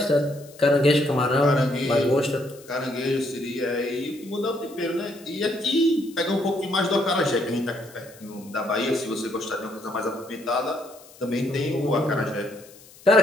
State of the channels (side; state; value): left; noise; hiss, 23 dB below the sound